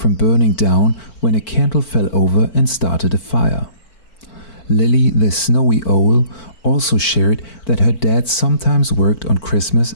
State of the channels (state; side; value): late; right; 4.5 ms